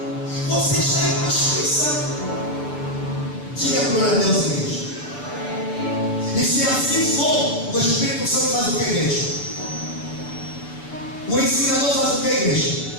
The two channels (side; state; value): right; late; 6.8 ms